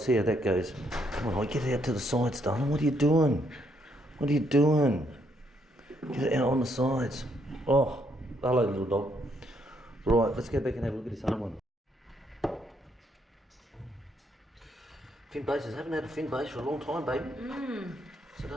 how that goes. Come on, get it out to the sides, darling. What are you doing? Get it out on the sides. Oh, hello, little dog. Right, let's go back and have a look at this other one. Fin bases. Haven't had a fin base for a long time, baby. So I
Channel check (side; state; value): both; normal; correlation 0.73